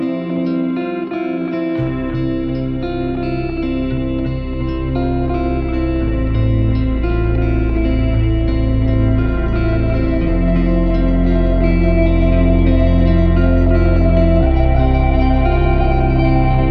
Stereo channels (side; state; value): both; identical; correlation 1.00